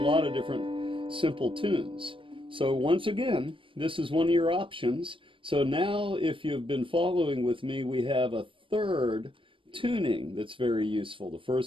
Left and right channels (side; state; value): left; late; 0.25 ms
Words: of different simple tunes. So once again, this is one of your options. So now if you've been following with me, we have a third tuning that's very useful. The